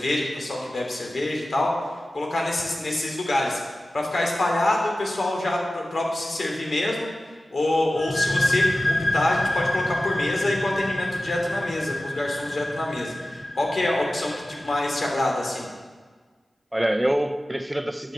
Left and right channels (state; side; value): normal; both; correlation 0.95